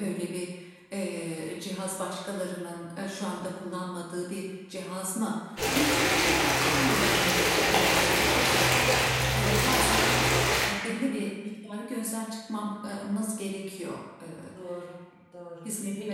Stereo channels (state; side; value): identical; both; correlation 1.00